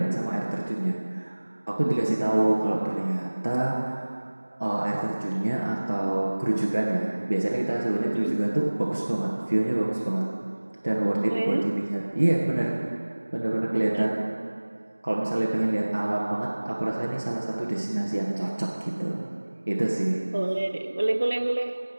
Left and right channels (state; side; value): inverted; both; correlation -1.00